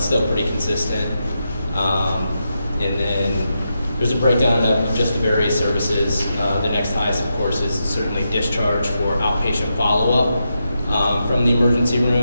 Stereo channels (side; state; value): both; inverted; correlation -0.86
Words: pretty consistent. And then there's a breakdown of just the various services. The next highest, of course, is certainly discharge for outpatient follow-up from the emergency